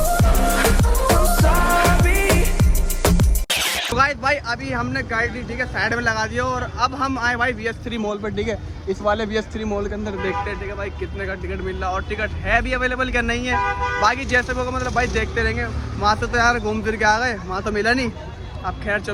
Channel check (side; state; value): both; identical; correlation 1.00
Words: तो गाइस भाई अभी हमने गाड़ी ठीक है साइड में लगा दिया, और अब हम आए भाई VS3 मॉल पर, ठीक है। इस वाले VS3 मॉल के अंदर देखते हैं, ठीक है भाई कितने का टिकट मिल रहा है, और टिकट है भी अवेलेबल क्या नहीं है, बाकी जैसे होगा मतलब भाई देखते रहेंगे। वहाँ से तो यार घूम फिर के आ गए, वहाँ तो मिला नहीं। अब खैर